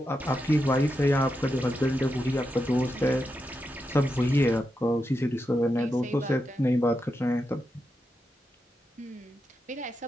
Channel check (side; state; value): both; normal; correlation 0.86